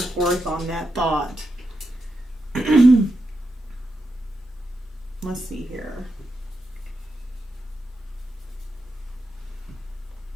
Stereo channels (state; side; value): normal; both; correlation 0.86